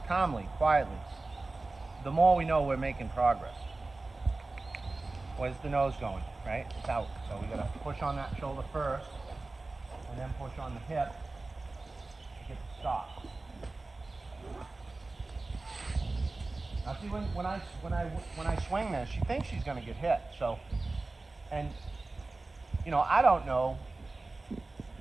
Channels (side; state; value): left; quieter; 3.3 dB